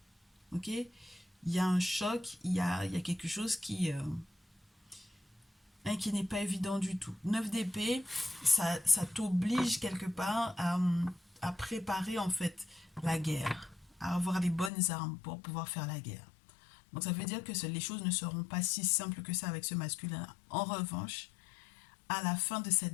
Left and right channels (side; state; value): right; drops out; at 14.7 s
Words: Ok? Il y a un choc, il y a quelque chose qui n'est pas évident du tout. 9 d'épée, ça t'oblige quelque part à préparer en fait la guerre, à avoir les bonnes armes pour pouvoir faire la guerre. Donc ça veut dire que les choses ne seront pas si simples que ça avec ce masculin. En revanche, à la fin de